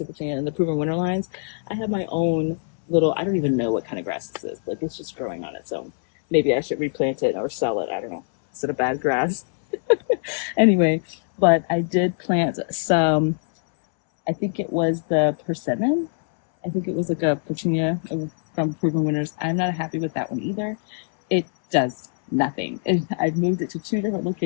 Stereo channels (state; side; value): silent; right; 63 dB below the other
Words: Petunia, in the Proven Winter lines. I have my own little, I don't even know what kind of grass this is. Like, it's just growing on its own. Maybe I should replant it or sell it. I don't know. Is it a bad grass? Anyway, but I did plant some, I think it was the persimmon. I think it was like a petunia from Proven Winners. I'm not happy with that one either. It does nothing. I've moved it to 2 different